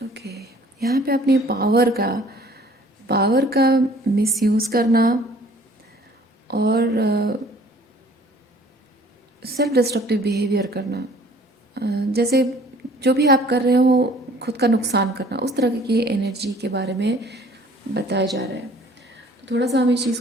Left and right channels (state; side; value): normal; both; correlation 0.54